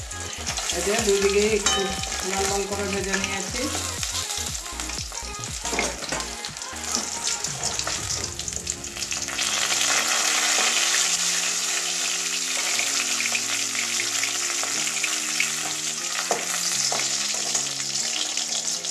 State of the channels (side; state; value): both; identical; correlation 1.00